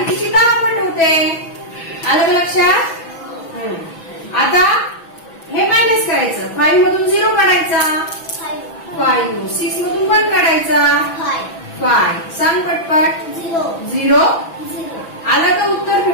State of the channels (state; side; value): late; right; 6.1 ms